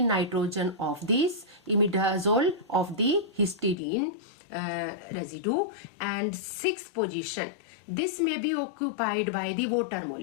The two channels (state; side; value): drops out; right; at 3.8 s